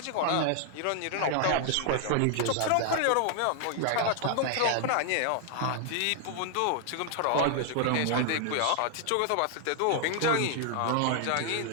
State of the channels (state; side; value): different; both; correlation 0.00